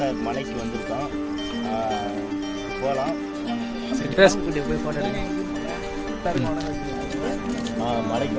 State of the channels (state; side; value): identical; both; correlation 1.00